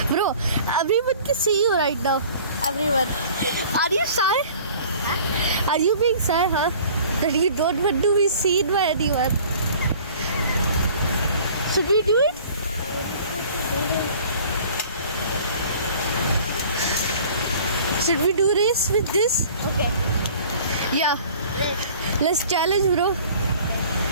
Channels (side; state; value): both; inverted; correlation -0.48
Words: Bro, everyone can see you right now. Everyone. Are you shy? Huh? Are you being shy, huh? That you don't want to be seen by anyone. Should we do it? Should we do race with this? Okay. Yeah. Let's challenge, bro.